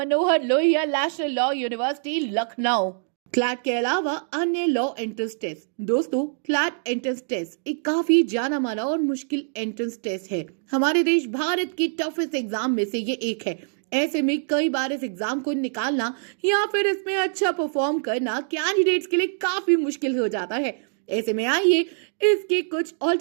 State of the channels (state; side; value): silent; left; digital silence